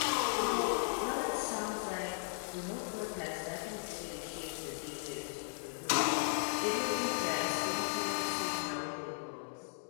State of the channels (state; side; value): silent; right; digital silence